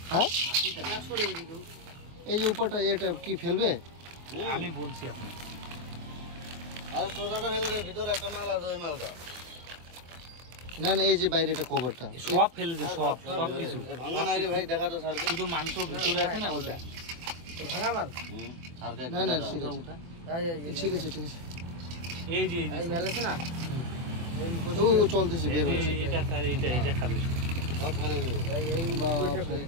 হ্যাঁ, এই যে উপরটা এটা কি ফেলবে? আমি বলছি আপনি না না, এই যে বাইরে এটা কভারটা সব ফেলে দে, সব সব কিছু ভাঙা নাই রে ভাই, দেখা তো স্যার, শুধু মাংস ভিতরে আছে না ওটা ভাঙা মাল। না না ঠিক আছে ঠিক আছে ঠিক আছে। এই যে এই মেল আছে না, ও চলতেছে বের হচ্ছে। এটা স্যার, এটা খাবে সব ফেলে দেবে,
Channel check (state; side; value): late; left; 23 ms